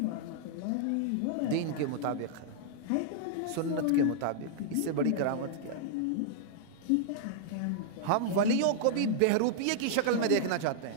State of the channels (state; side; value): different; both; correlation -0.01